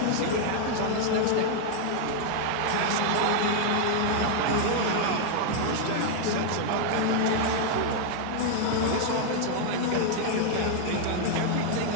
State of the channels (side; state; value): both; different; correlation 0.00